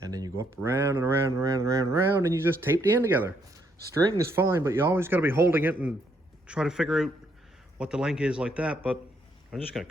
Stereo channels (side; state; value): both; normal; correlation 0.73